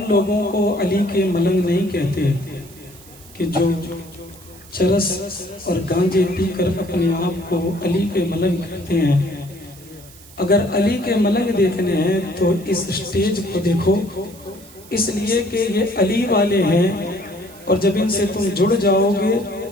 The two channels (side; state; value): right; noise; hiss, 22 dB below the sound